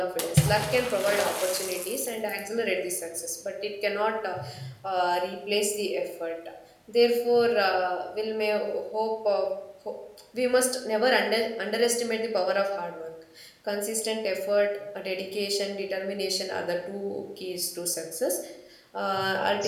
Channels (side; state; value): both; identical; correlation 1.00